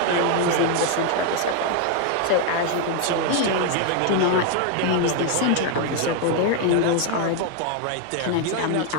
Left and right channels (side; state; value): both; different; correlation 0.00